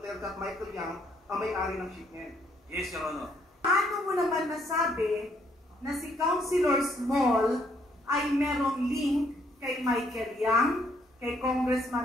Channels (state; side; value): normal; both; correlation 0.69